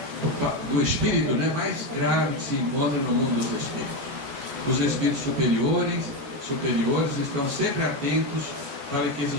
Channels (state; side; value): late; left; 14 ms